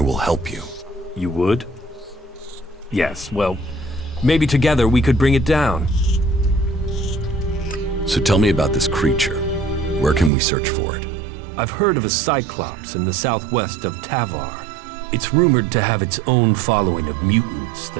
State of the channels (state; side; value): drops out; left; at 10.3 s